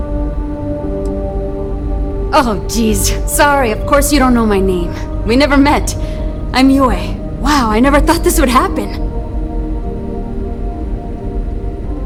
Oh, geez. Sorry, of course you don't know my name. We never met. I'm Yue. Wow, I never thought this would happen.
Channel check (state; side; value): identical; both; correlation 1.00